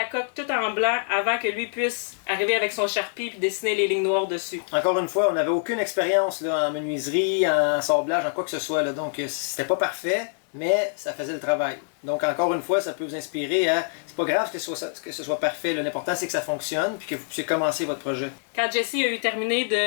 coque tout en blanc avant que lui puisse arriver avec son Sharpie et dessiner les lignes noires dessus. Encore une fois, on n'avait aucune expérience là, en menuiserie, en sablage, en quoi que ce soit. Là, donc, c'était pas parfait, mais ça faisait le travail. Donc, encore une fois, ça peut vous inspirer à... C'est pas grave que ce soit parfait. L'important, c'est que ça fonctionne puis que vous puissiez commencer votre projet. Quand Jesse a eu terminé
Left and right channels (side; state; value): right; silent; digital silence